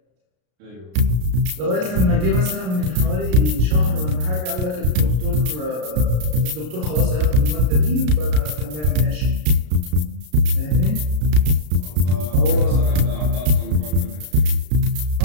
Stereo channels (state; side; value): late; left; 33 ms